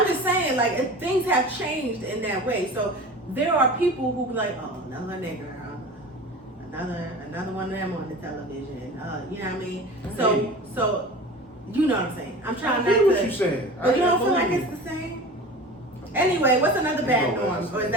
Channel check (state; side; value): normal; both; correlation 0.36